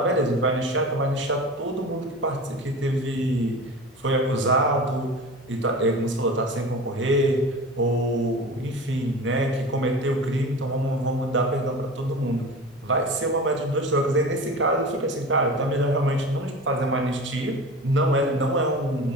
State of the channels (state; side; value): normal; both; correlation 0.33